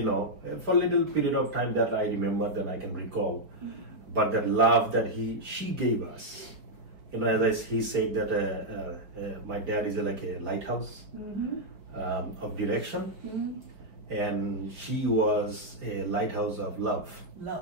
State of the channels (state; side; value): late; left; 4.8 ms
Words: for a little period of time that I remember, that I can recall. But that love that she gave us, as he said that my dad is like a lighthouse of direction, and she was a lighthouse of love.